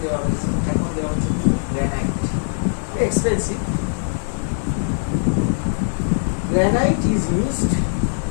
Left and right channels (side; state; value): right; silent; digital silence